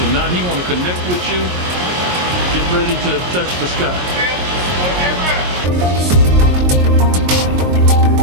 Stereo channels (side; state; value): left; late; 22 ms